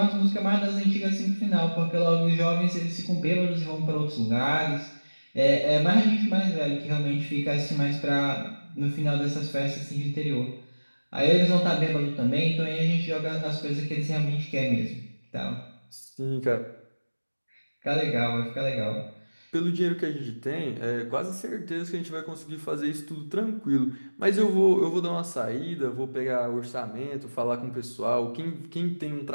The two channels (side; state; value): both; inverted; correlation -1.00